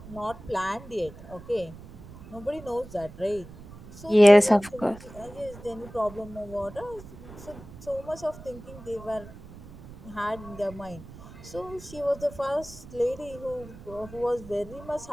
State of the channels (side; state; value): right; noise; rumble, 17 dB below the sound